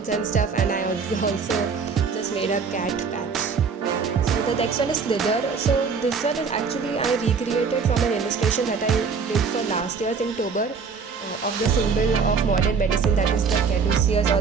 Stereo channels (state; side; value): quieter; left; 5.5 dB